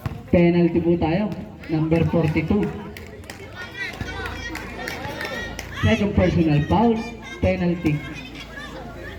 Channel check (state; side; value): identical; both; correlation 1.00